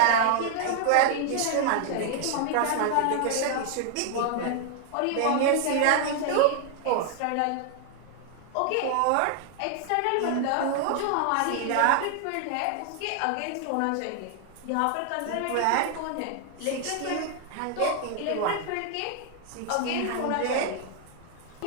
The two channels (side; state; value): both; different; correlation 0.00